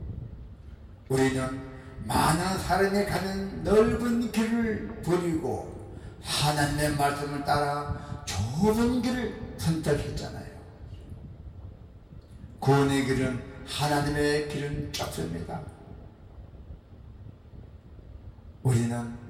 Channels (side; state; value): both; identical; correlation 1.00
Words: 우리는 많은 사람이 가는 넓은 길을 버리고 하나님의 말씀을 따라 좁은 길을 선택했잖아요. 구원의 길은 하나님의 길은 좁습니다. 우리는